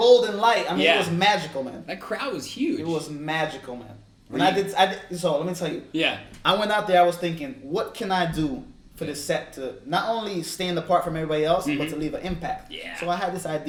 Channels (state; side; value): identical; both; correlation 1.00